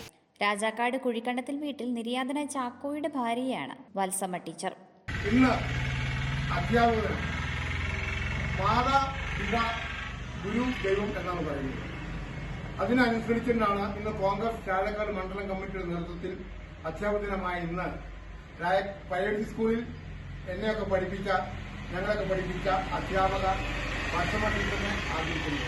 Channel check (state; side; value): identical; both; correlation 1.00